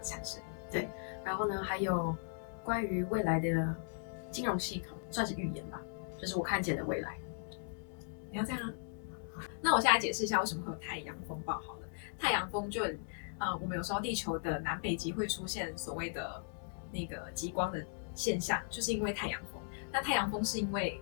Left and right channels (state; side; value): silent; right; digital silence